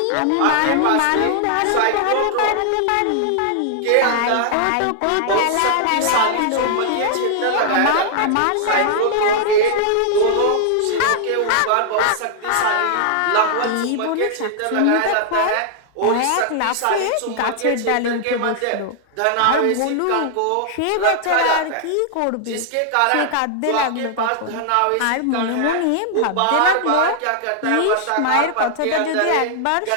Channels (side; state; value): both; different; correlation -0.01